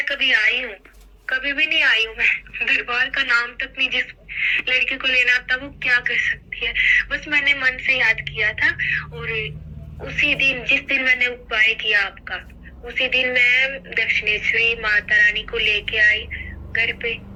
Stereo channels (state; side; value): identical; both; correlation 1.00